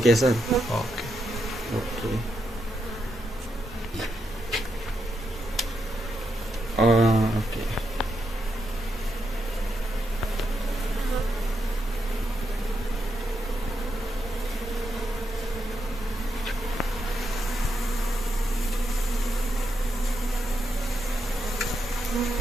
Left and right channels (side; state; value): both; normal; correlation 0.83